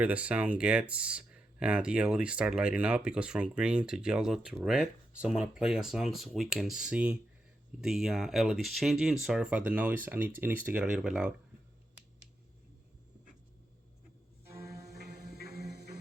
the sound gets, the LEDs start lighting up. It goes from green to yellow to red. So I'm gonna play a song so we can see the LEDs changing. Sorry about the noise. It needs to get a little bit loud.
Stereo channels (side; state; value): both; normal; correlation 0.86